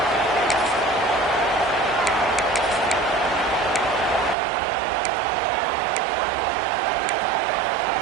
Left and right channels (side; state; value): left; drops out; at 4.4 s